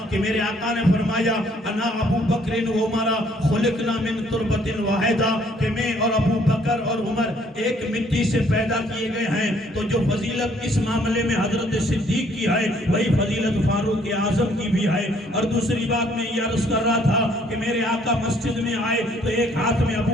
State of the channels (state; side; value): normal; both; correlation 0.63